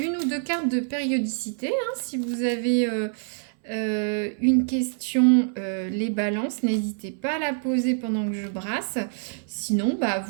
ou deux cartes de périodicité, hein, si vous avez une question, les balances, n'hésitez pas à la poser pendant que je brasse. Sinon, bah,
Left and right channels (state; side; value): silent; left; 61 dB below the other